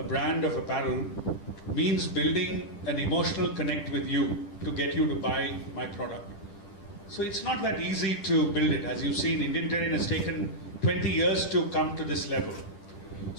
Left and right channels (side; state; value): right; late; 10 ms